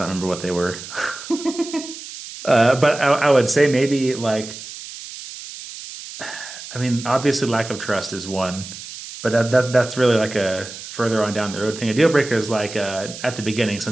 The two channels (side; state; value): right; noise; hiss, 12 dB below the sound